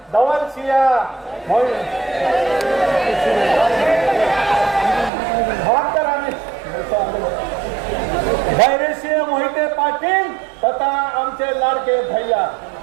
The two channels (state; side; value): drops out; left; at 5.1 s